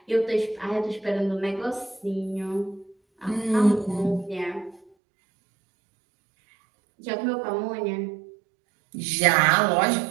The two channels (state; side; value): drops out; left; at 4.8 s